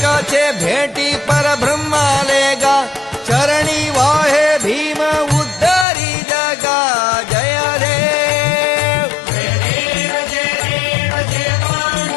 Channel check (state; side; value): drops out; right; at 5.9 s